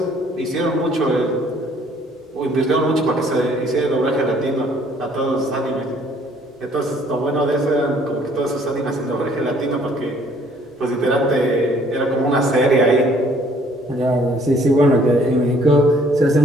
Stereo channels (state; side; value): normal; both; correlation 0.60